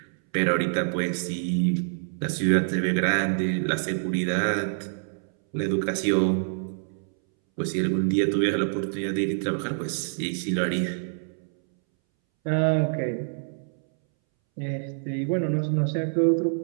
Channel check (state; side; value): silent; left; 61 dB below the other